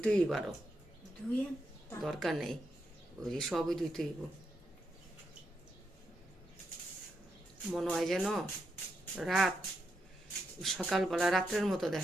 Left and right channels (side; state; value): both; normal; correlation 0.83